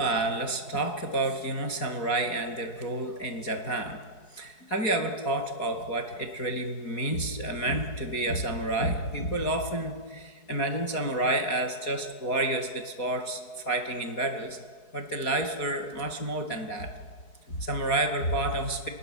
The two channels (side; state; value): right; late; 4.7 ms